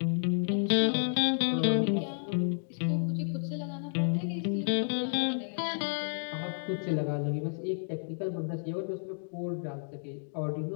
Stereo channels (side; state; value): right; silent; digital silence